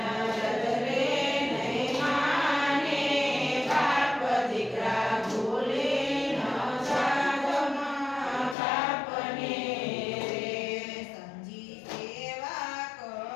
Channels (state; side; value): drops out; right; at 8.6 s